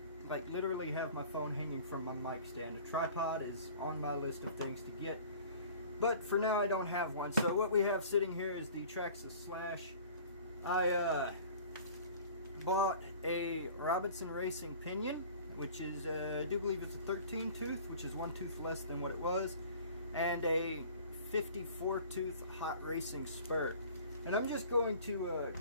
like literally have my phone hanging from my mic stand. A tripod is on my list of things to get, but for now I don't have one. So what we have sitting here is the Traxxas Slash. I bought a Robinson Racing pinion, which is I do believe it's a 13 tooth, which is one tooth less than what it was, and a 54 tooth hot racing spur. And I'm just going to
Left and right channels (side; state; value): both; inverted; correlation -0.46